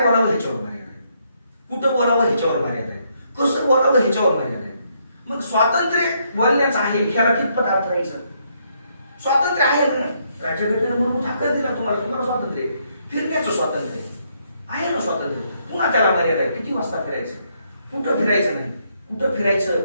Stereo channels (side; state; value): both; inverted; correlation -0.74